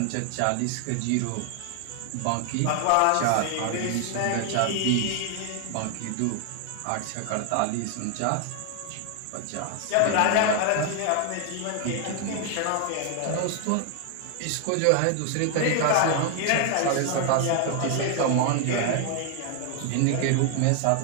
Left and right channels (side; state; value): both; different; correlation 0.00